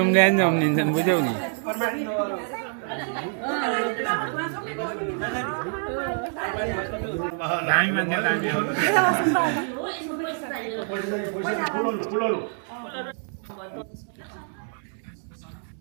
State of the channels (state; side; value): silent; left; 61 dB below the other